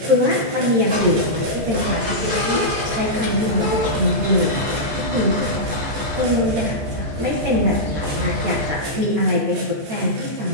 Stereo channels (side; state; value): left; late; 14 ms